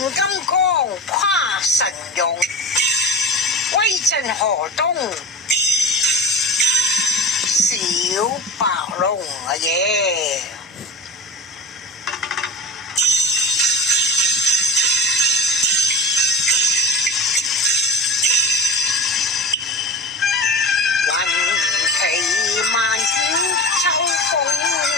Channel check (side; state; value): both; normal; correlation 0.34